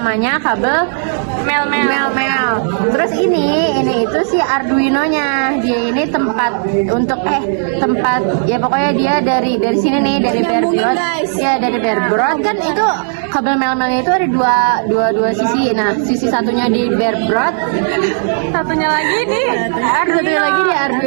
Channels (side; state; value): left; silent; digital silence